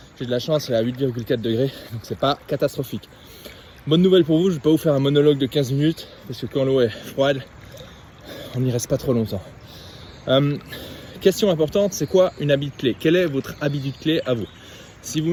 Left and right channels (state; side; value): identical; both; correlation 1.00